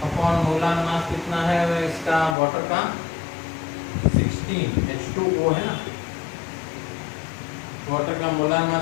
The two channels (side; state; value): right; drops out; at 2.4 s